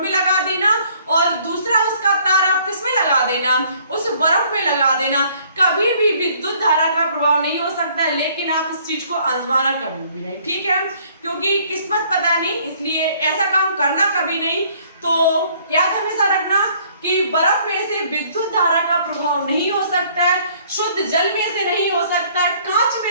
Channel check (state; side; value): inverted; both; correlation -0.60